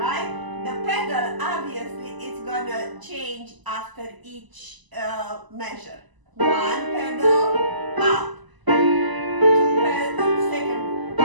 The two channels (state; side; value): late; left; 1.0 ms